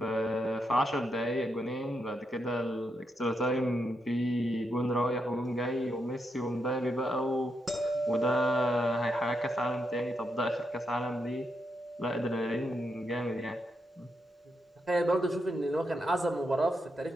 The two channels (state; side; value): normal; both; correlation 0.82